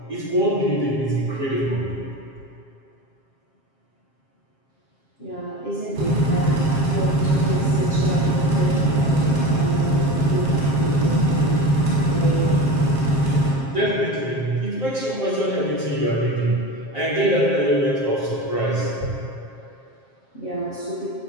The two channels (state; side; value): late; right; 7.5 ms